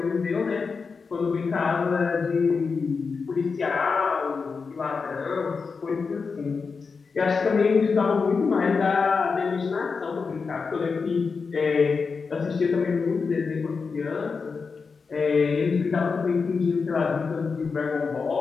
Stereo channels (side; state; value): right; quieter; 5.0 dB